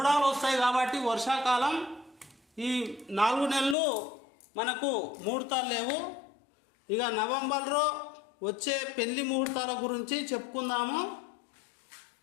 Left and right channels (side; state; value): right; drops out; at 3.8 s